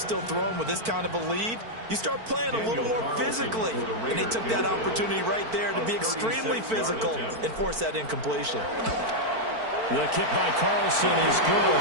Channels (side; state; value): left; late; 4.5 ms